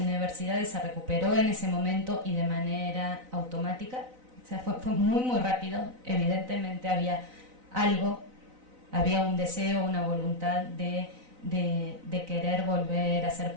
se recuperó en ese momento y de manera automática. O sea, fue muy, muy rápido. Evidentemente había un deseo, una voluntad de querer volver a hacer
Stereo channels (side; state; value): left; late; 4.0 ms